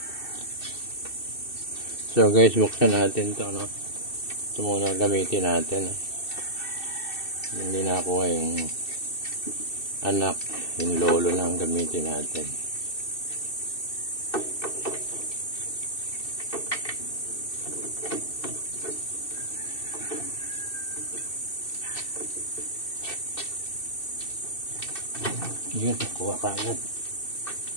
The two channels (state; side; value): late; right; 2.6 ms